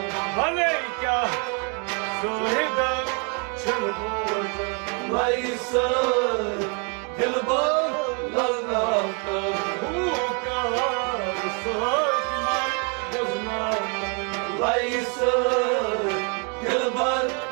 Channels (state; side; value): quieter; left; 36.6 dB